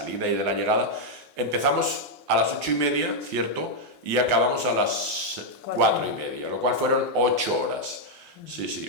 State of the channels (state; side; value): normal; both; correlation -0.01